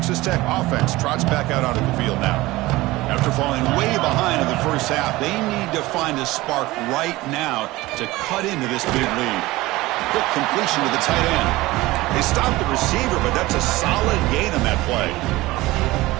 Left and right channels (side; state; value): left; quieter; 19.2 dB